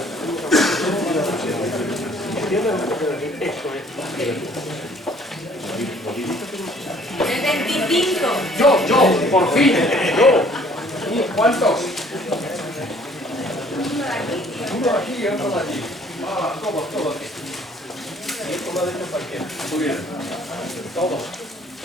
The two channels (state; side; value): normal; both; correlation 0.57